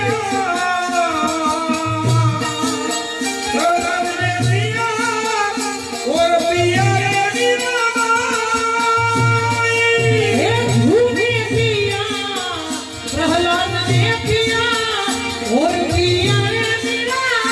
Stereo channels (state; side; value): identical; both; correlation 1.00